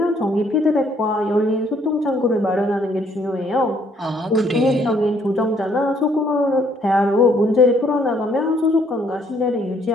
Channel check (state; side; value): normal; both; correlation 0.66